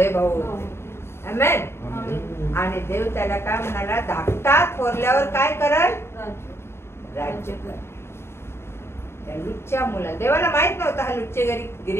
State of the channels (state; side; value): late; right; 0.12 ms